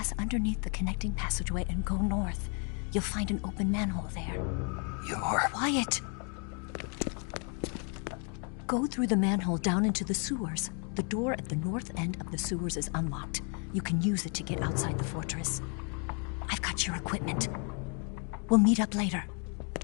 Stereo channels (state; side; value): quieter; right; 38.5 dB